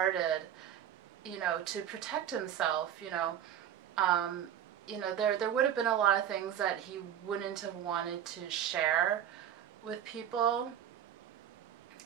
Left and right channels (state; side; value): quieter; left; 10.1 dB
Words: to protect himself, there would have been a lot of things that he wouldn't have wanted to share with people.